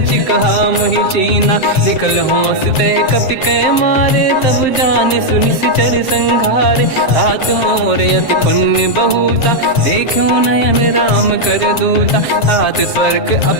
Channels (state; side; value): late; right; 7.5 ms